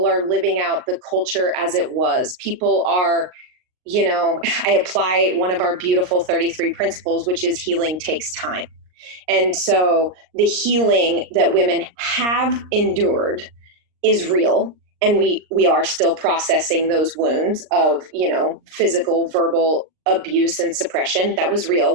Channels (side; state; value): left; late; 39 ms